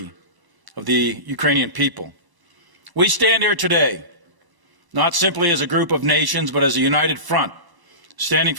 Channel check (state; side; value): late; left; 1.0 ms